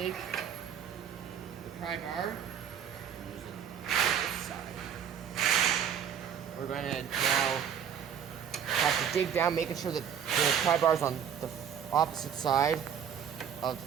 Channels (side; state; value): left; quieter; 8.4 dB